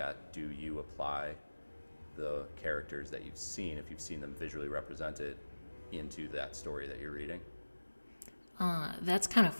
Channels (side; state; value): both; inverted; correlation -1.00